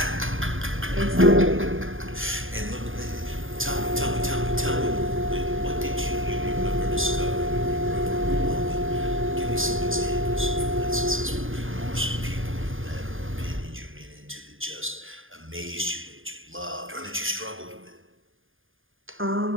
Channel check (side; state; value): left; late; 0.59 ms